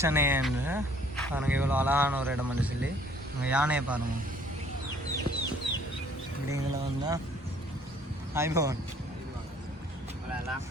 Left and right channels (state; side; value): normal; both; correlation 0.58